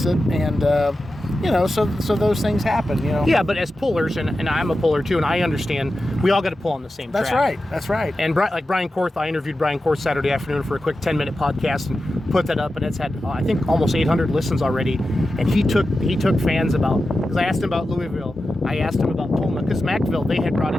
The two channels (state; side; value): normal; both; correlation 0.92